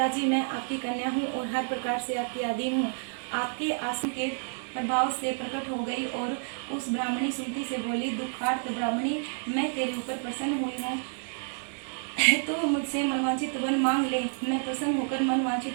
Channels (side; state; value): left; silent; 58 dB below the other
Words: मैं आपकी कन्या हूँ और हर प्रकार से आपकी आदि हूँ। आपके आसन के प्रभाव से प्रकट हो गई और उस ब्राह्मणी सुमति से बोली, दुखार्त ब्राह्मणी, मैं तेरे ऊपर प्रसन्न हुई हूँ। तो मुझसे मनवांछित वर मांग ले, मैं प्रसन्न होकर